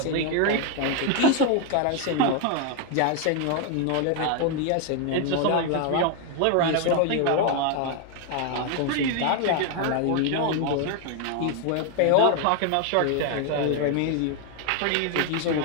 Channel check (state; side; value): different; both; correlation 0.01